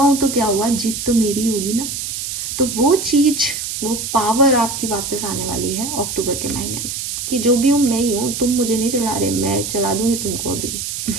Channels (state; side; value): noise; right; hiss, 5 dB below the sound